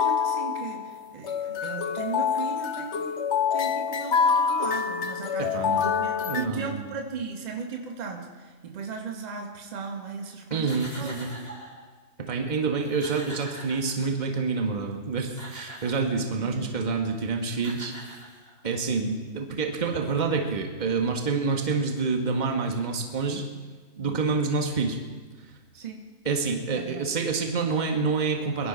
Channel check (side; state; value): right; late; 2.1 ms